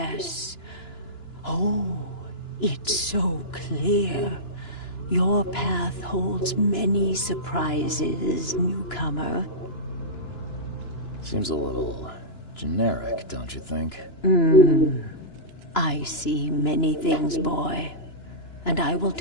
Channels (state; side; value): late; right; 2.9 ms